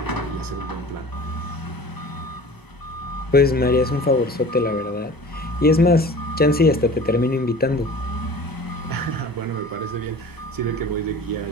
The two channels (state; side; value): normal; both; correlation 0.41